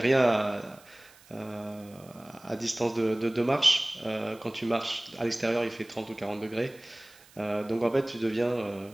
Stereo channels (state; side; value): noise; right; hiss, 26 dB below the sound